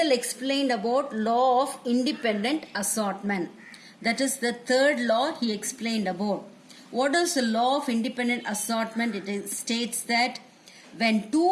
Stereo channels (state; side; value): identical; both; correlation 1.00